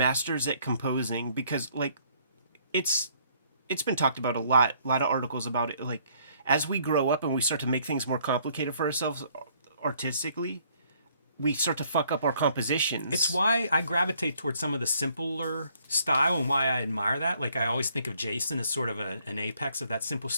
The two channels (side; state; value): both; inverted; correlation -0.64